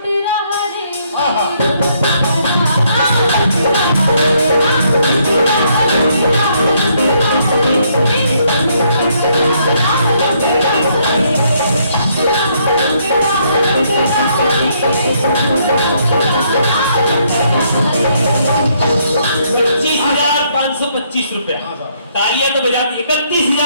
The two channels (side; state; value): both; inverted; correlation -0.70